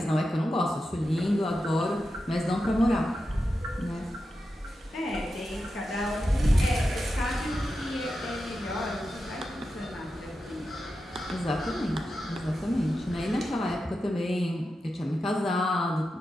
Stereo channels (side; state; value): both; normal; correlation 0.90